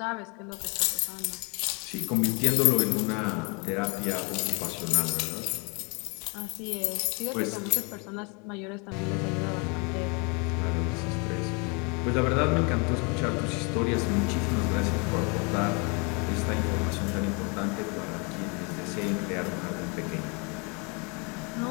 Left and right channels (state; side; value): quieter; right; 32.4 dB